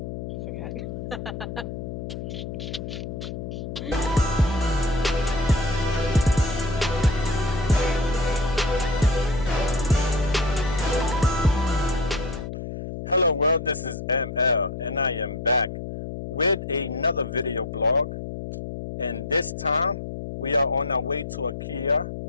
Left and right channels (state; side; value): noise; left; hum, 7 dB below the sound